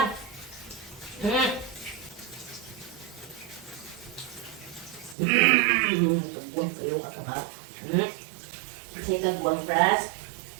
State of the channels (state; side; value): drops out; left; at 5.2 s